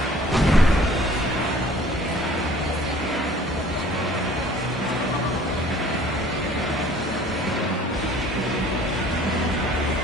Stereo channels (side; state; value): both; normal; correlation 0.52